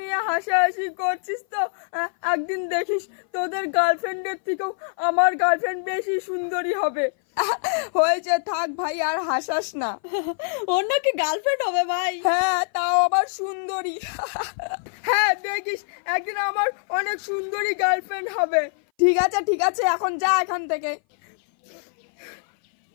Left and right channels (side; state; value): right; silent; 58 dB below the other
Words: হাসাহাসি করছিস তো, একদিন দেখিস তোদের গার্লফ্রেন্ডের থেকেও আমার গার্লফ্রেন্ড বেশি সুন্দরী হবে। হয়েছে, থাক ভাই, আর হাসাস না। ওর নাকি গার্লফ্রেন্ড হবে ভাই? হ্যাঁ, তাও আবার সুন্দরী। হ্যাঁ, দেখিস একদিন আমার অনেক সুন্দরী গার্লফ্রেন্ড হবে। ঠিক আছে ঠিক আছে, এখন যা এখান থেকে।